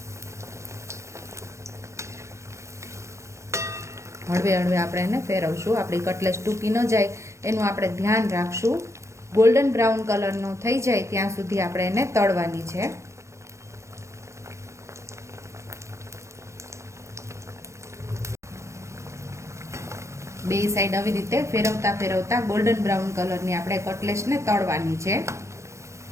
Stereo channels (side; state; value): left; late; 0.14 ms